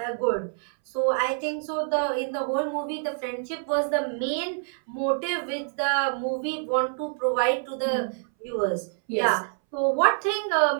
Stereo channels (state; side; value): silent; left; 61 dB below the other